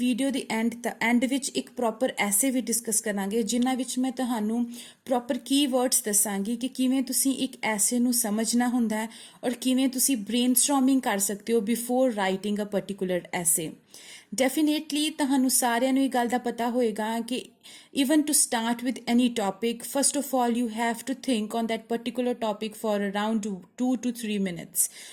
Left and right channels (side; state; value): both; identical; correlation 1.00